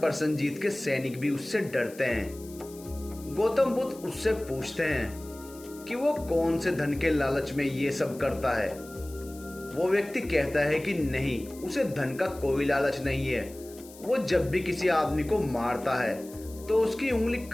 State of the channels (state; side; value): noise; left; hiss, 20 dB below the sound